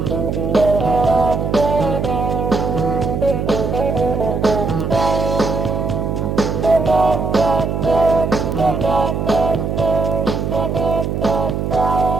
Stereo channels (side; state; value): right; noise; hum, 2 dB below the sound